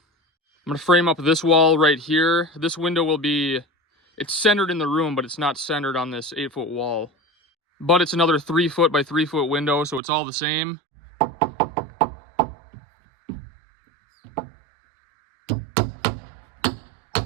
I'm gonna frame up this wall right here. This window will be, it's centered in the room, but it's not centered on this 8-foot wall. But it's another 3-foot by 3-foot window, so it's all the same.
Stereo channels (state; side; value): drops out; left; at 10.0 s